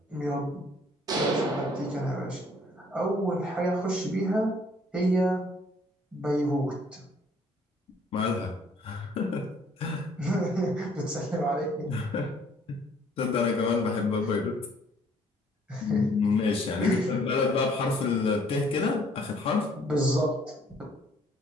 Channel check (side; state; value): both; normal; correlation 0.61